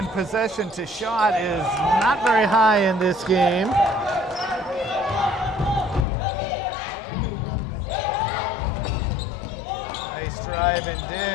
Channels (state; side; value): drops out; right; at 6.1 s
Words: possession to shot is not very high in this game. Nice drive and